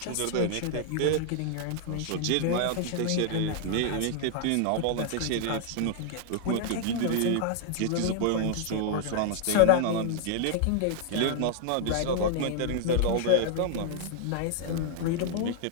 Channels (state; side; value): different; both; correlation 0.00